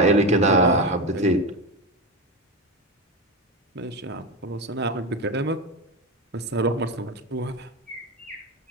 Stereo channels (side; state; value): both; normal; correlation 0.18